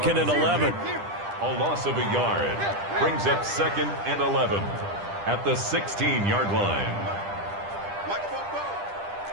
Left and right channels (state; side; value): late; left; 10 ms